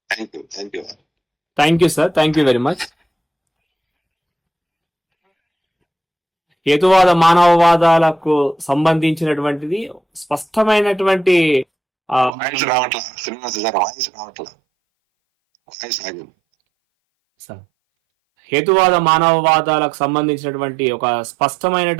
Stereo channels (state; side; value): drops out; left; at 12.3 s